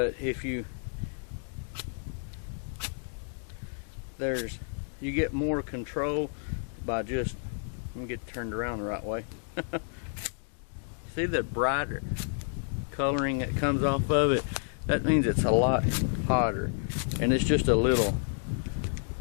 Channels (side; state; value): right; silent; digital silence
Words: if you get more control by just, let me get turned around the right way. See the brighter coloring that comes off of it? That means it's a lot hotter, and it's just a little.